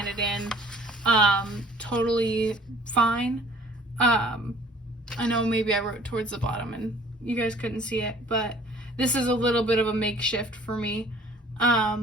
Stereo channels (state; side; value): normal; both; correlation 0.53